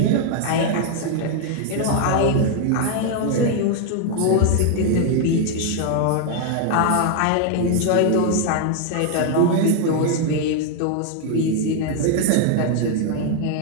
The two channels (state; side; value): different; both; correlation 0.00